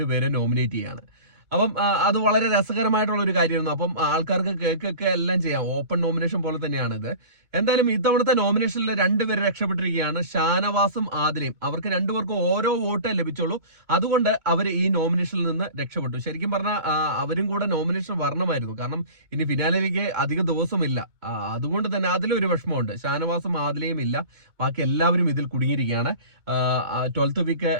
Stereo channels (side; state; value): left; late; 2.2 ms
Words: നോമിനേറ്റ് ചെയ്യാണ്. അപ്പം അത് വളരെ രസകരമായിട്ടുള്ള ഒരു കാര്യമായിരുന്നു. അപ്പം ആൾക്കാർക്ക് കേക്കൊക്കെ എല്ലാം ചെയ്യാം. ഓപ്പൺ നോമിനേഷൻ പോലെ തന്നെയാണ് ഇത്. എന്തായാലും ഇത്തവണത്തെ നോമിനേഷനിൽ രണ്ടുപേര് രക്ഷപ്പെട്ടിരിക്കുകയാണ്, ഷാനവാസും ആദിലയും. അവർക്ക് രണ്ടുപേർക്കും ഓരോ വോട്ടേ ലഭിച്ചുള്ളൂ. അതുകൊണ്ട് അവർ ഈ നോമിനേഷനിൽ നിന്ന് രക്ഷപ്പെട്ടു. ശരിക്കും പറഞ്ഞാൽ അവരും കൂടെ നോമിനേഷൻ വരണമായിരുന്നു. കാരണം ഇനി ഫിനാലിലേക്ക് അധിക ദിവസമില്ല. അതുകൊണ്ട് തന്നെ അതിലൊരു വിഷമമുണ്ട്. ഷാനവാസും ആദിലയും ഇല്ല, ബാക്കി എല്ലാവരും ഇതിൽ കുടുങ്ങിയിരിക്കുകയാണ്. 12th